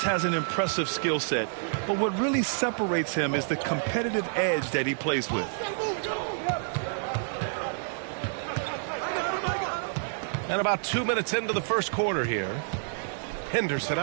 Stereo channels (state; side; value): silent; left; digital silence